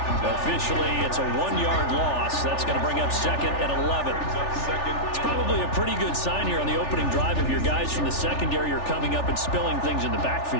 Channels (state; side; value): late; right; 3.4 ms